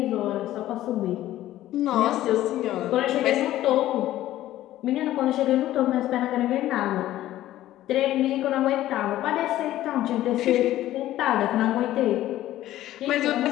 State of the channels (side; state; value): right; quieter; 14.1 dB